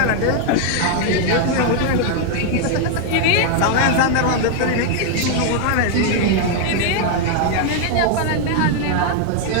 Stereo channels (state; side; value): different; both; correlation 0.00